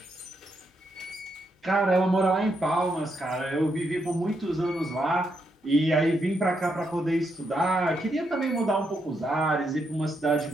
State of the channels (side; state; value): both; normal; correlation 0.80